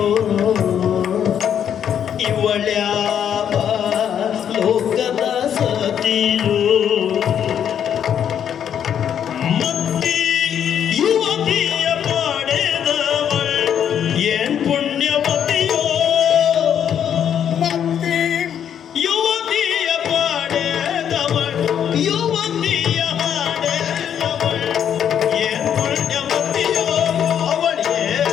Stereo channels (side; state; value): right; quieter; 8.9 dB